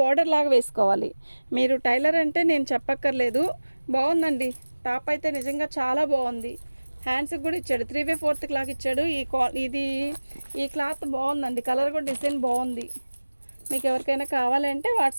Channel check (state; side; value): inverted; both; correlation -1.00